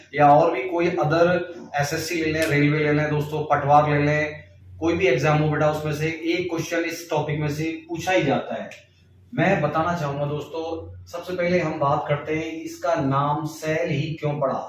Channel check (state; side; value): identical; both; correlation 1.00